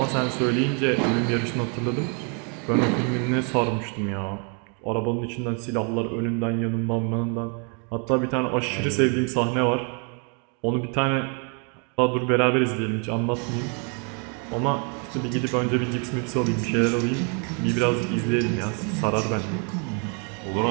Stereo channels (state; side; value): quieter; left; 37.7 dB